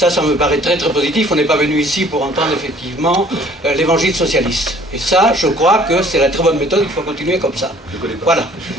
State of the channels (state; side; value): normal; both; correlation 0.55